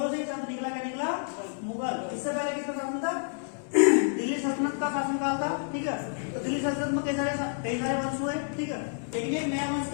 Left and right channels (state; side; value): silent; right; 58 dB below the other